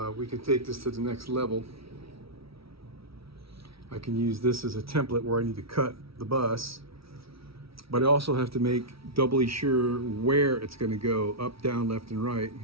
we can take this to the next level. I can use this as a template where I need to cut the bus, but I also have to make doubly sure where it's going to go, up, down, left, and right,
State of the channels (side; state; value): left; late; 0.76 ms